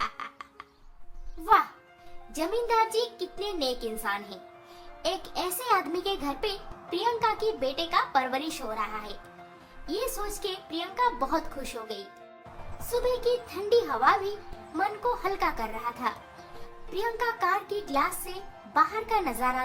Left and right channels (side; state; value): both; identical; correlation 1.00